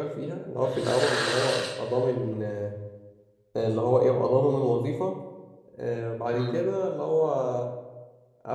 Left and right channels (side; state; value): both; identical; correlation 1.00